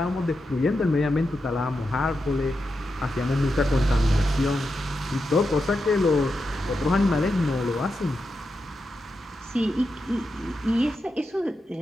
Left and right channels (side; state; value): both; normal; correlation 0.87